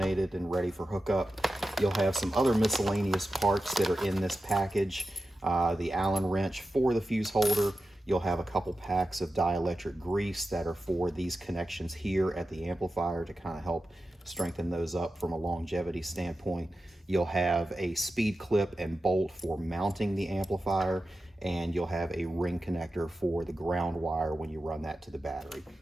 and ready for hookup. You'll have some other miscellaneous parts that are in this package. The Allen wrench for the fuse holder. You'll have a couple packs of dielectric grease that are for these connections here at the amplifier to kind of help strengthen those up from a longevity standpoint. You'll have a speed clip and bolt for mounting the amplifier, and you'll have a ring connector for the ground wire when you run that to the battery.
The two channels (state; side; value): normal; both; correlation 0.92